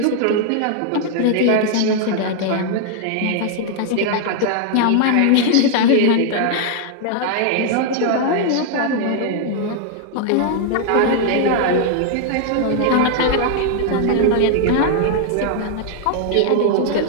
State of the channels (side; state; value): both; different; correlation 0.00